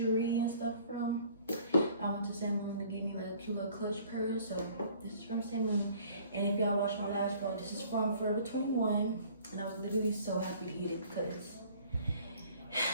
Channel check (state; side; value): inverted; both; correlation -0.54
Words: and stuff from. I went to Sam Moon to get me like a cute little clutch purse, so this is from Sam Moon. And if y'all watched my last vlog, this is from Forever 21, and I was literally so happy to get it because